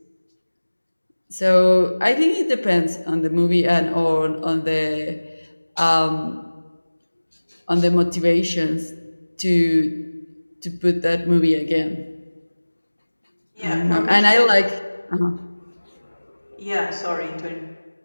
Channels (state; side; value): inverted; both; correlation -1.00